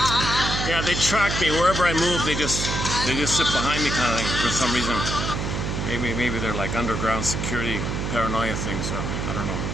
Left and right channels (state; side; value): noise; right; hum, 2 dB below the sound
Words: Yeah, they track me wherever I move. They just sit behind me, kind of thing, for some reason. Maybe they're like underground security paranoia things. Or I don't know,